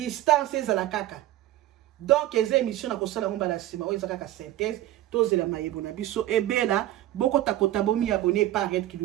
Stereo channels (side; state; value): left; quieter; 14.4 dB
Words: ezala kaka donc les émissions na kosala ngomba la sima oyo ezaka ka synthèse tozela mayebo na biso ebela boko takota bomi abonné par Red